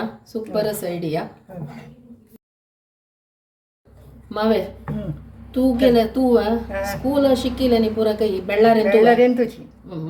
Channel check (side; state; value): both; identical; correlation 1.00